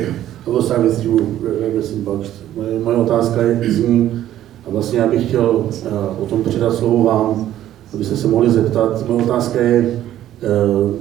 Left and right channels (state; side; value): quieter; left; 12.4 dB